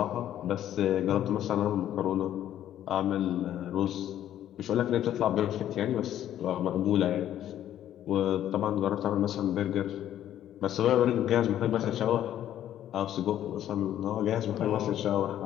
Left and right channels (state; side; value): quieter; right; 11.5 dB